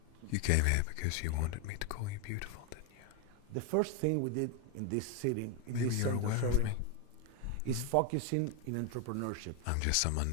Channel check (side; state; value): both; different; correlation 0.01